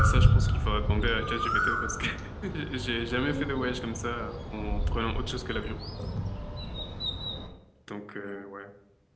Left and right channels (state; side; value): identical; both; correlation 1.00